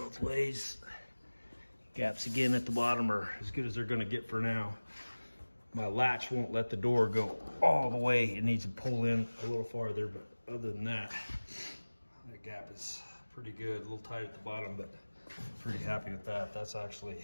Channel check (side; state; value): both; inverted; correlation -1.00